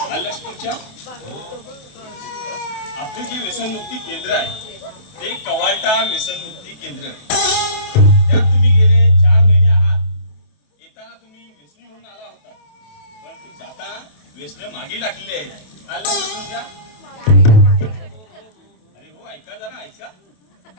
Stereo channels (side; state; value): right; late; 28 ms